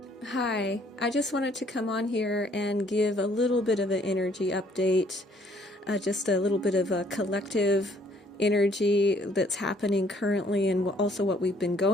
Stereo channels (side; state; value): both; normal; correlation 0.63